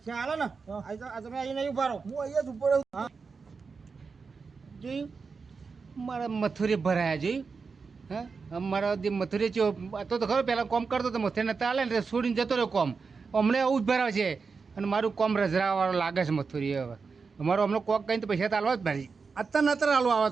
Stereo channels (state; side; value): quieter; left; 4.9 dB